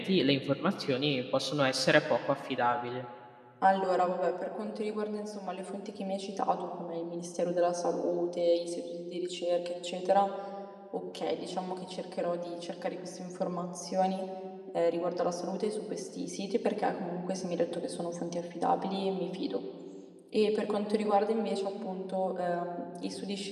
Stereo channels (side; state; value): both; identical; correlation 1.00